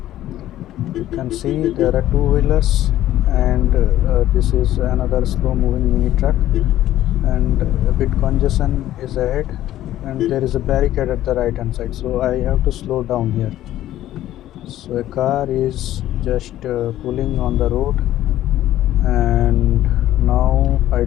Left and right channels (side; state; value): right; quieter; 13.4 dB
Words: You can see there are two-wheelers and this is another slow moving mini truck and a bit congestion is ahead and there is a barricade at the right hand side, so I have to slow down here. So a car is just pulling on the road and now I